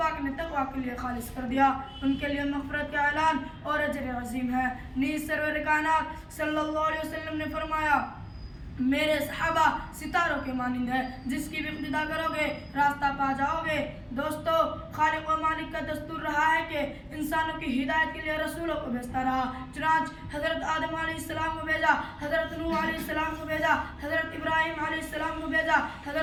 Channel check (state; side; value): identical; both; correlation 1.00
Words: نے تقوی کے لیے خالص کر دیا، ان کے لیے مغفرت کا اعلان اور اجر عظیم ہے. نیز سرور کائنات صلی اللہ علیہ وسلم نے فرمایا: میرے صحابہ ستاروں کے مانند ہے، جس کی بھی اقتدا کرو گے راستہ پا جاؤ گے. دوستو، خالق و مالک کا دستور رہا ہے کہ انسانوں کی ہدایت کے لیے رسولوں کو بھیجتا رہا. چنانچہ حضرت آدم علیہ السلام کو بھیجا، حضرت نوح علیہ السلام کو بھیجا، حضرت ابراہیم علیہ السلام کو بھیجا،